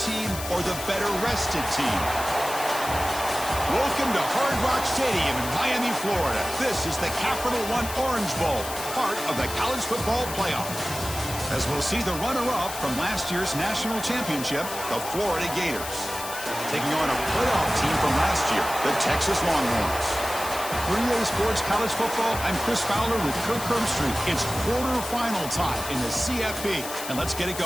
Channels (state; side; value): noise; left; hiss, 9 dB below the sound